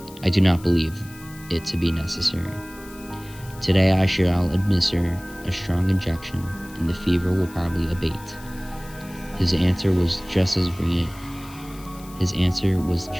I do not believe it to be necessary. Today I shall administer a strong injection, and the fever will probably abate. His answer was just as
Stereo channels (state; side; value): noise; left; hiss, 20 dB below the sound